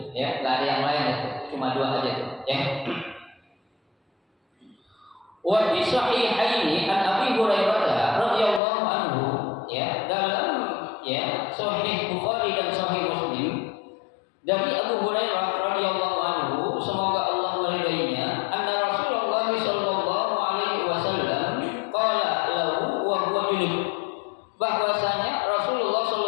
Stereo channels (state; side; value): drops out; right; at 8.6 s